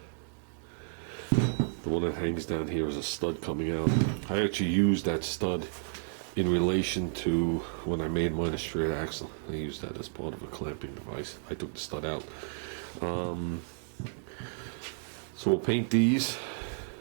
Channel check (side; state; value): left; silent; 57 dB below the other